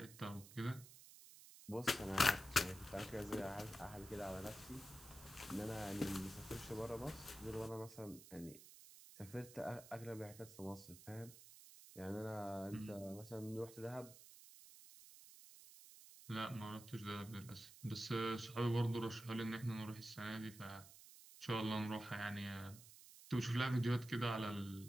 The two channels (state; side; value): noise; right; hiss, 17 dB below the sound